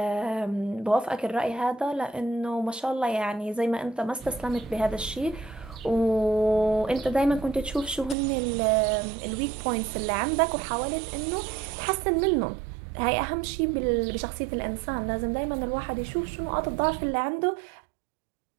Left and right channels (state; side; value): drops out; left; at 8.2 s